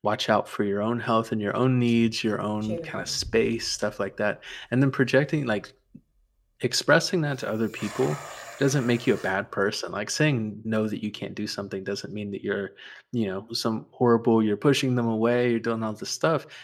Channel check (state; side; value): identical; both; correlation 1.00